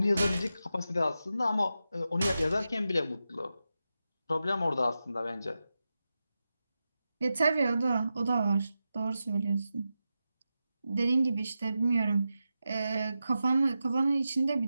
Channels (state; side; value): inverted; both; correlation -0.90